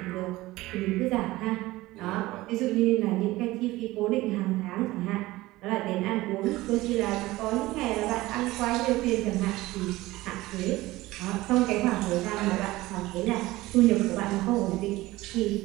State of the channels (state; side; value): quieter; left; 18.5 dB